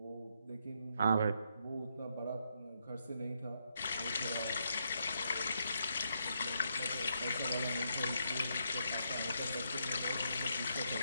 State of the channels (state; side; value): inverted; both; correlation -0.77